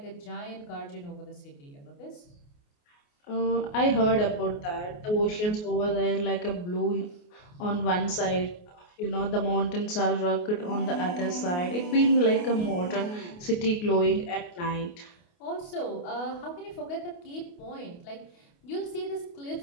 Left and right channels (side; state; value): right; late; 28 ms